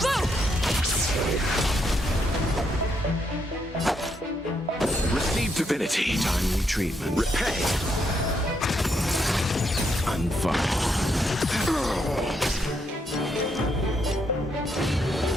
Receive divinity. Timely treatment. Repay. Unfurl.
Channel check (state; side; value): normal; both; correlation 0.77